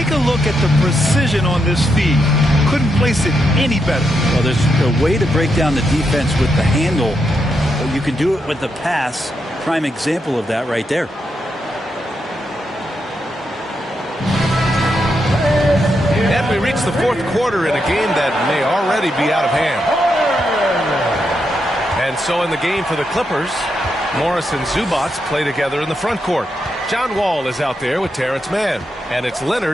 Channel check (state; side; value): normal; both; correlation 0.82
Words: a look at the precision on this feed. Couldn't place it any better. Well, there's a way to break down the defense with the handle. But you can do it with the pass. Prime example of that right there. And we reach the fourth quarter in a game that may already be out of hand. And so in the game for the Clippers, Morris and Zubac play together in the front court. John Wall is out there with Terrence Mann. And it's